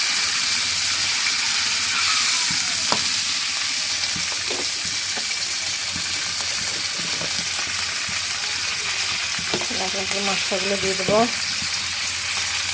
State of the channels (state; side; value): identical; both; correlation 1.00